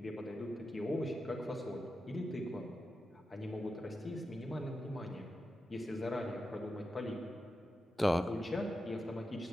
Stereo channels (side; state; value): both; normal; correlation 0.90